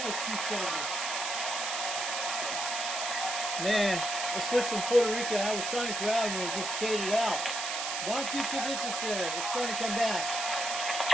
270. Man, I switched from Puerto Rico. I was trying to grab and it just faded out. Not good conditions there. It's trying to come back.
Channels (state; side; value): noise; right; hiss, 2 dB below the sound